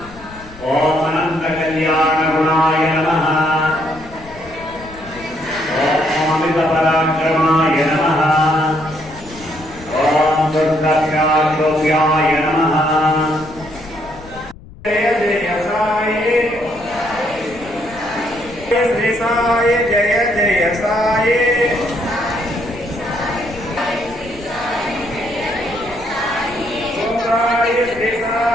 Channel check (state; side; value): noise; left; rumble, 19 dB below the sound